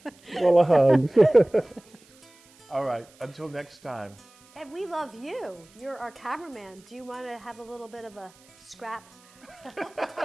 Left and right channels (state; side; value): noise; right; hiss, 28 dB below the sound